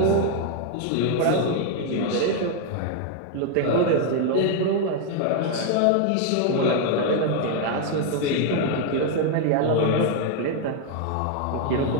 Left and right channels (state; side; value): different; both; correlation 0.01